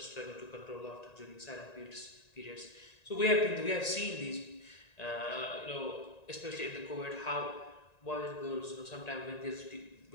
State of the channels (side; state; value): right; late; 1.9 ms